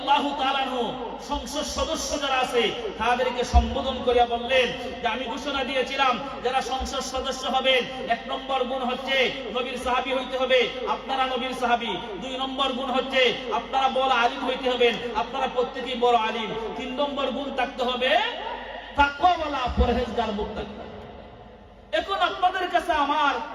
তাআলা আনহু সংসদ সদস্য যারা আছে তাদেরকে সম্বোধন করিয়া বললেন যে আমি ঘোষণা দিয়েছিলাম যারা সংসদ সদস্য হবেন, 1 নম্বর গুণ হচ্ছে নবীর সাহাবী হইতে হবে, আপনারা নবীর সাহাবী। 2 নম্বর গুণ হচ্ছে আপনারা বড় আলিম হইতে হবেন, আপনারা প্রত্যেকেই বড় আলিম। 3 নম্বর গুণ থাকতে হবে তাকওয়াওয়ালা, পরহেজগার, মুত্তাকি। এখন আপনাদের কাছে আমার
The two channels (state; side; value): identical; both; correlation 1.00